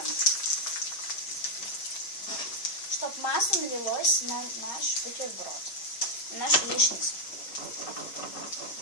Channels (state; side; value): late; right; 6.3 ms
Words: Чтобы масло налилось на наш бутерброд. На нашу яичницу.